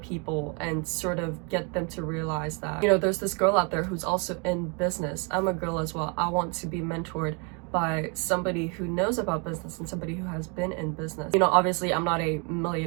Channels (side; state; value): left; quieter; 34.0 dB